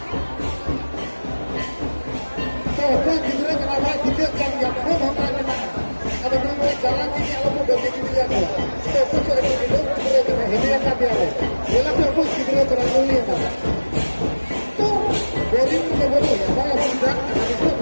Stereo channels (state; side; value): inverted; both; correlation -1.00